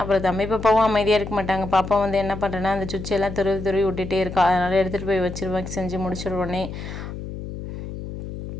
அப்புறம் தம்பி பாப்பாவும் அமைதியாக இருக்க மாட்டாங்க. பாப்பா வந்து என்ன பண்ணுறேன்னா அந்த சுவிட்செல்லாம் துருவி விட்டுட்டே இருக்கா. அதனால் எடுத்துகிட்டு போய் வச்சுருவேன். செஞ்சு முடிச்சிடுவோன்னே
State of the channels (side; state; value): left; noise; hum, 9 dB below the sound